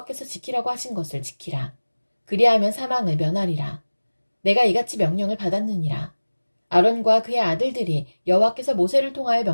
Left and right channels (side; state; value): both; inverted; correlation -1.00